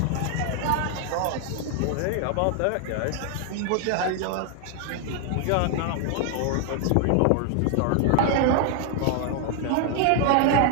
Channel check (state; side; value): different; both; correlation 0.00